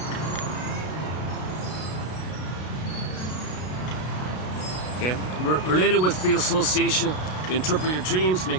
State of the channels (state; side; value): late; right; 33 ms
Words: Okay. Related with free association, you interpret your dreams,